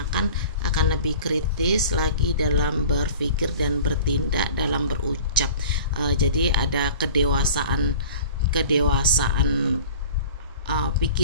akan lebih kritis lagi dalam berpikir dan bertindak, dalam berucap. Jadi ada kedewasaan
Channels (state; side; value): inverted; both; correlation -0.42